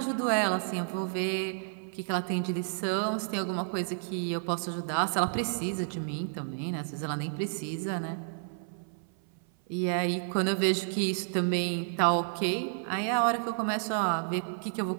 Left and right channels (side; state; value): left; silent; 55 dB below the other